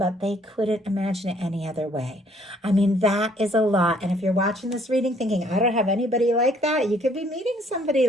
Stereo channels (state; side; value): normal; both; correlation 0.63